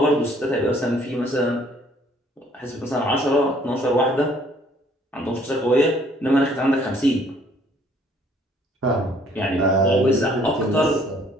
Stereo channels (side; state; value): both; normal; correlation 0.61